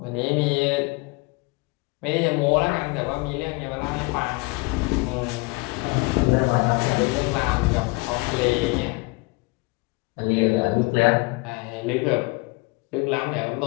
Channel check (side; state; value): right; quieter; 26.7 dB